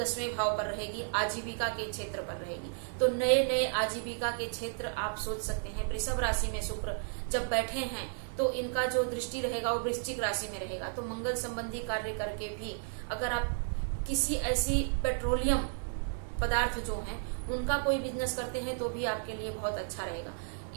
भाव पर रहेगी, आजीविका के क्षेत्र पर रहेगी। तो नए नए आजीविका के क्षेत्र आप सोच सकते हैं। वृषभ राशि में शुक्र जब बैठे हैं तो इनका जो दृष्टि रहेगा वो वृश्चिक राशि में रहेगा। तो मंगल संबंधी कार्य करके भी अगर आप किसी ऐसी पेट्रोलियम पदार्थ जो हैं उनका कोई बिजनेस करते हैं तो भी आपके लिए बहुत अच्छा रहेगा।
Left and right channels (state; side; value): silent; left; digital silence